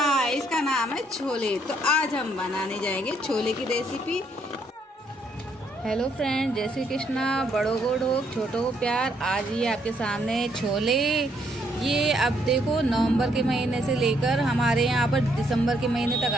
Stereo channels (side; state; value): both; normal; correlation 0.72